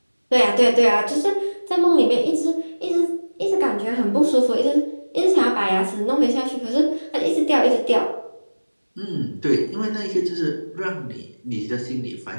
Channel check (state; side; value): inverted; both; correlation -1.00